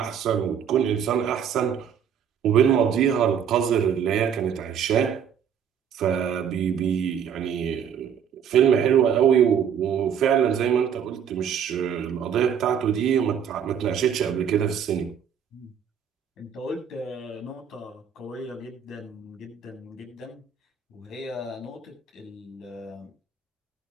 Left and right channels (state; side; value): quieter; left; 8.0 dB